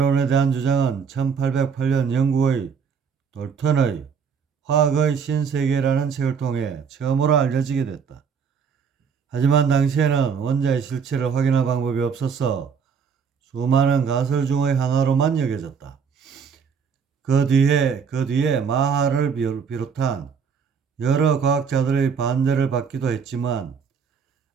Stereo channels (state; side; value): quieter; left; 6.3 dB